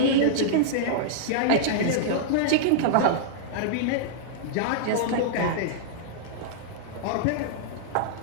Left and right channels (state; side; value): different; both; correlation -0.02